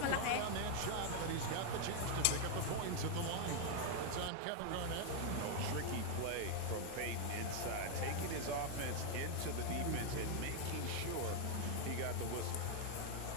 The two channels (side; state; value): both; different; correlation 0.00